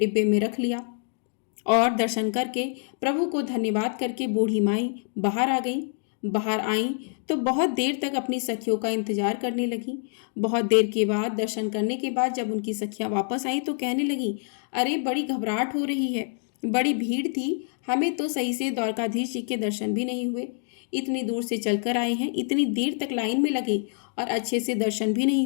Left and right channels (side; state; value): right; silent; 61 dB below the other